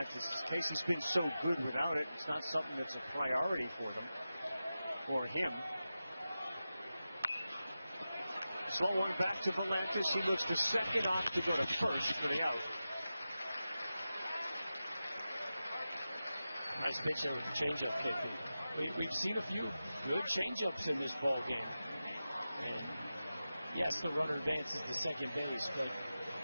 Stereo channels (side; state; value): both; inverted; correlation -0.93